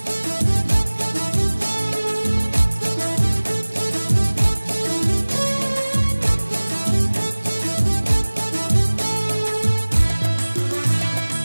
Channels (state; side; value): inverted; both; correlation -1.00